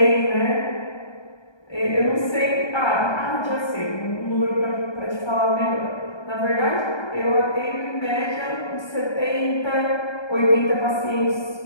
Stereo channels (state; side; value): late; right; 1.3 ms